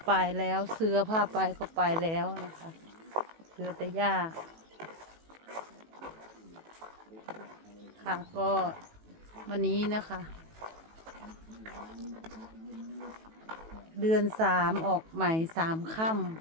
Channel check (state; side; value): late; left; 18 ms